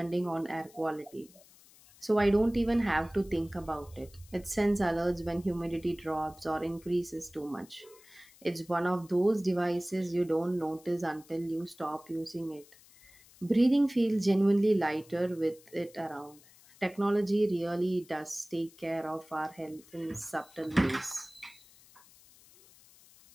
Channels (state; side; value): noise; left; hiss, 25 dB below the sound